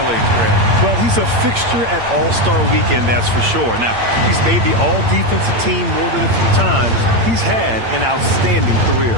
Grant. Well, he's a fixture at All-Star Weekend, that's for sure. Now, he's made the All-Defensive Team more than a few times. He's had an outstanding career.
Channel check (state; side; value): late; left; 8.7 ms